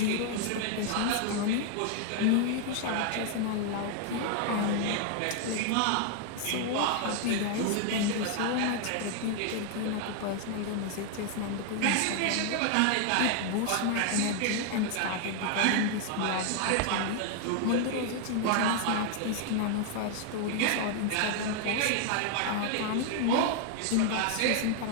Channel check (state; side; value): different; both; correlation 0.00